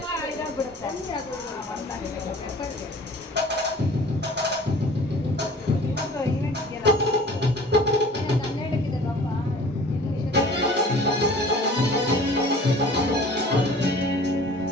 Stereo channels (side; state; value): both; normal; correlation 0.46